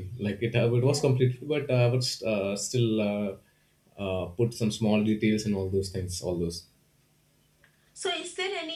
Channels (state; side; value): identical; both; correlation 1.00